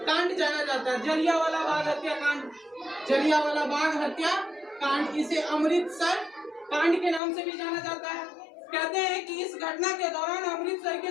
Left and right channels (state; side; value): drops out; right; at 7.2 s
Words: कांड जाना जाता है? जलियांवाला बाग हत्याकांड, जलियांवाला बाग हत्याकांड, इसे अमृतसर कांड के नाम से भी जाना जाता है। कहते हैं कि इस घटना के दौरान अमृतसर के